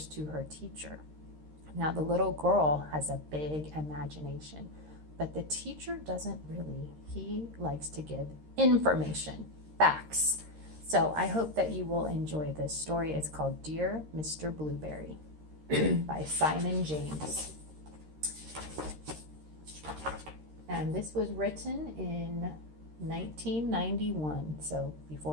to her teacher. Now, the little girl has a big imagination, but the teacher doesn't really. He likes to give information, facts. So I hope that you will enjoy this story. It's called Dear Mr. Blueberry by Simon James. And this was written in 1991, so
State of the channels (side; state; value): left; late; 13 ms